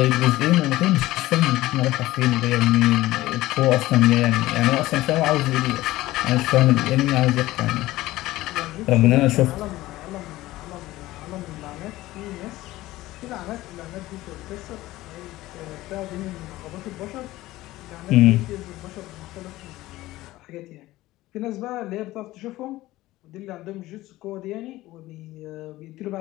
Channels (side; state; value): right; quieter; 17.2 dB